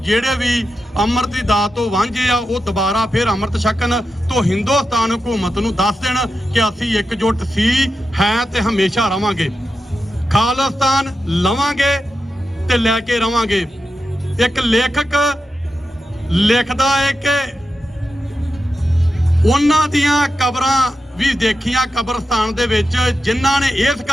ਜਿਹੜੇ ਵੀ ਅੰਮ੍ਰਿਤ ਦੀ ਦਾਤ ਤੋਂ ਵਾਂਝੇ ਆ ਉਹ ਦੁਬਾਰਾ ਫਿਰ ਅੰਮ੍ਰਿਤ ਛਕਣ ਤੋਂ ਹਿੰਦੁਸਤਾਨ ਹਕੂਮਤ ਨੂੰ ਦੱਸ ਦੇਣ ਕਿ ਅਸੀਂ ਇਕਜੁੱਟ ਸੀ ਹੈ ਤੇ ਹਮੇਸ਼ਾ ਰਵਾਂਗੇ। ਖਾਲਿਸਤਾਨ ਲਵਾਂਗੇ ਤੇ ਲੈ ਕੇ ਰਵਾਂਗੇ। ਇੱਕ ਲੇਖਕ ਲਿਖਦਾ ਹੈ ਕਿ ਉਹਨਾਂ ਦੀਆਂ ਕਬਰਾਂ ਵੀ ਦੇਖੀਆਂ ਕਬਰਸਤਾਨ ਦੇ ਵਿੱਚ ਜਿਨ੍ਹਾਂ ਨੇ ਇਸ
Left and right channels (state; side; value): normal; both; correlation 0.89